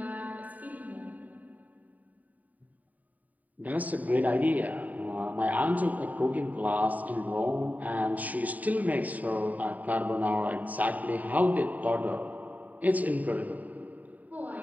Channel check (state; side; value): late; left; 0.075 ms